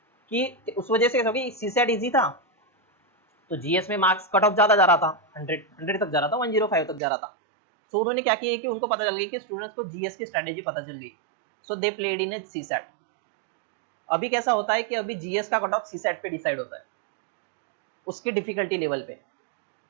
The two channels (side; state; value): left; drops out; at 7.0 s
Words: कि उस वजह से कैसा हो गया, सीसेट इजी था तो जीएस में मार्क्स कट ऑफ ज्यादा जा रहा था, 100 तक जा रहा था, 105 तक जा रहा था। सो उन्होंने क्या किया कि उनको पता चल गई कि स्टूडेंट्स को जीएस की स्ट्रेटेजी पता चल गई, सो they played in A CSAT. अभी कैसा होता है कि अभी जीएस का कट ऑफ सीसेट पे डिसाइड होता है, उसकी डिफिकल्टी लेवल पे।